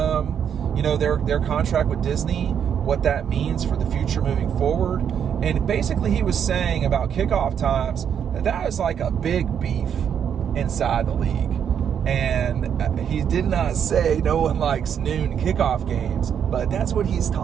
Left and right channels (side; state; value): left; quieter; 8.3 dB